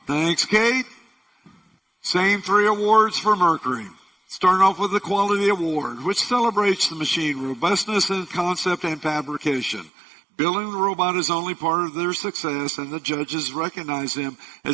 Thanks, Kate. Same 3 awards for Mercury. Starting off with the Quality Award, which celebrates the machine robustness in concept and fabrication. Building the robot is only part of their success, and the judges recognize them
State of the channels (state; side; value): drops out; left; at 9.9 s